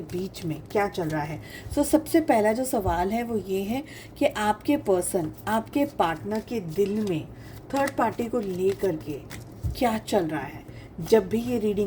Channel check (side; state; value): both; identical; correlation 1.00